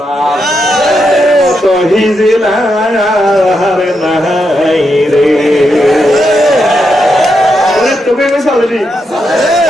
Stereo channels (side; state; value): both; normal; correlation 0.83